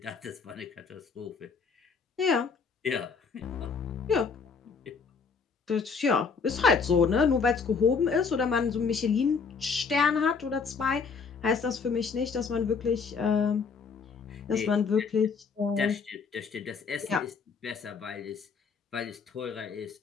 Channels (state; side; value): quieter; right; 5.4 dB